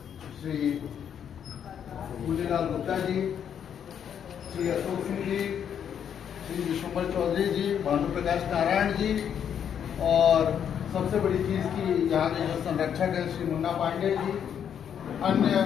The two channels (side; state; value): right; quieter; 8.6 dB